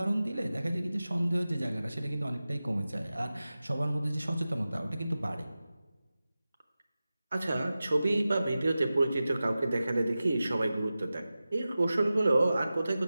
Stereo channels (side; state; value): both; inverted; correlation -0.95